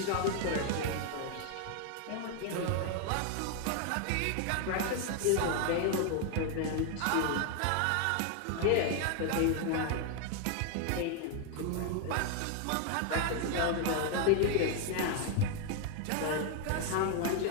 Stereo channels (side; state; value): both; different; correlation 0.00